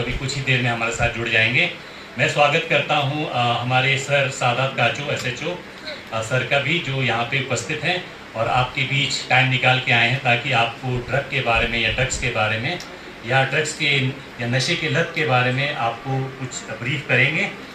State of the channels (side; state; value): both; identical; correlation 1.00